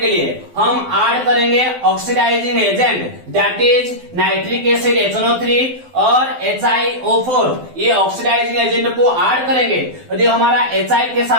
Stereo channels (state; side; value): late; left; 12 ms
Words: लिए हम ऐड करेंगे oxidising agent, that is nitric acid HNO3 और HiO4। ये ऑक्सीडाइजिंग एजेंट को ऐड करेंगे। यदि हमारा HI के